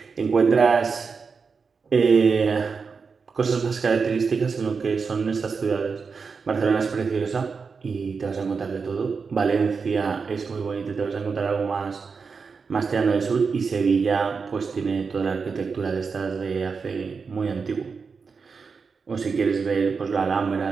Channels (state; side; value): quieter; left; 5.2 dB